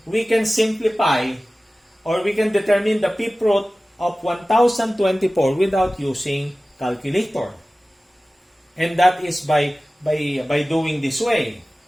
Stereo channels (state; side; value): normal; both; correlation 0.97